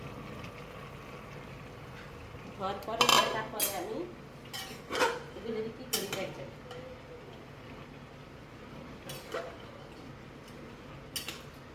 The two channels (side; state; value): both; identical; correlation 1.00